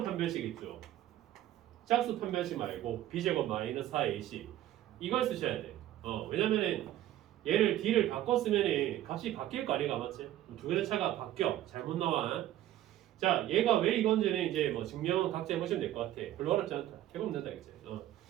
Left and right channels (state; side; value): quieter; left; 13.4 dB